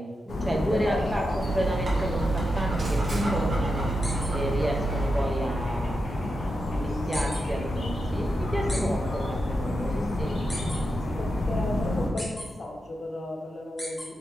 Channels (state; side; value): normal; both; correlation 0.87